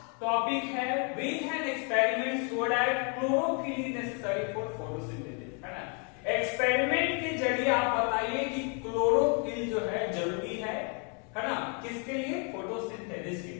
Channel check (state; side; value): quieter; right; 37.4 dB